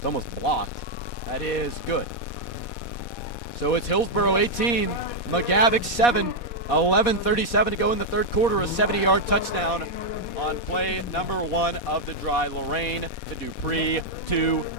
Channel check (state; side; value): late; right; 4.2 ms